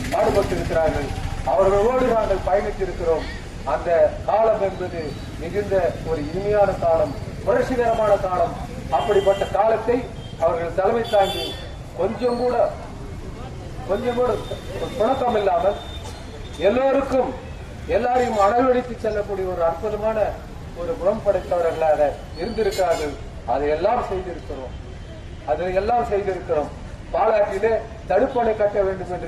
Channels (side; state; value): both; identical; correlation 1.00